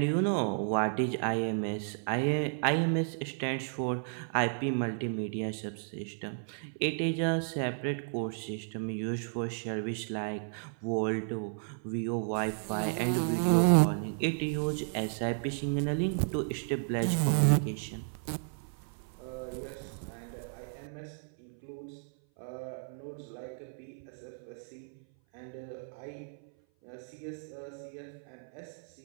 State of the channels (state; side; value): silent; left; 55 dB below the other